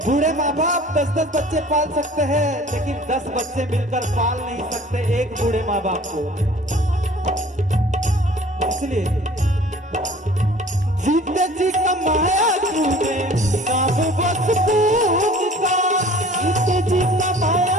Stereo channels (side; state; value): both; normal; correlation 0.48